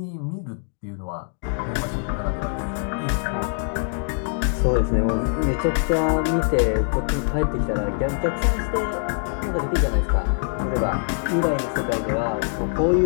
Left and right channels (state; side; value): silent; right; 63 dB below the other